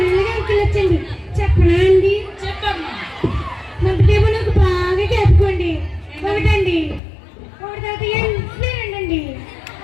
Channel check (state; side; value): drops out; right; at 7.0 s